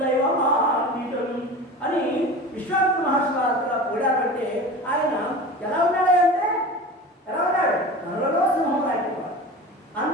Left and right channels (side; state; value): both; normal; correlation 0.33